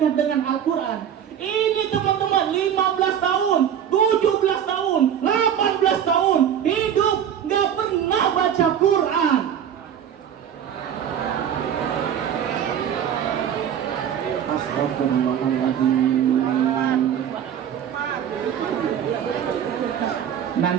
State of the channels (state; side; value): quieter; left; 9.1 dB